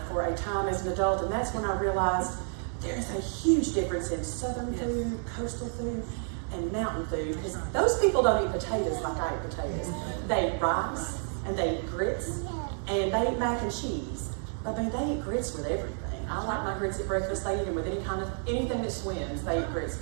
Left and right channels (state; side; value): silent; left; 58 dB below the other